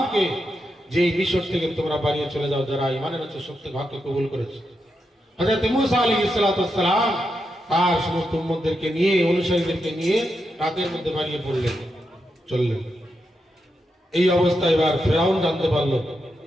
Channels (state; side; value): normal; both; correlation 0.85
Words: যে মিশর থেকে তোমরা বানিয়ে চলে যাও, যারা ঈমান এনেছে, সত্য হককে কবুল করেছে। হযরত মুসা আলাইহিস সালাম তার সমস্ত উম্মতদেরকে নিয়ে, অনুসারীদেরকে নিয়ে রাতের মধ্যে বানিয়ে পড়লেন, চললেন। এই অবস্থা এবার ফিরাউন জানতে পারলো,